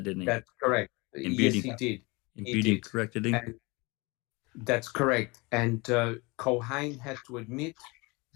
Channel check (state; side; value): quieter; right; 26.0 dB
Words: didn't he? That's correct. And Yes, he did. And He Beauty did. corrected him. And that's correct. And Culhane had to admit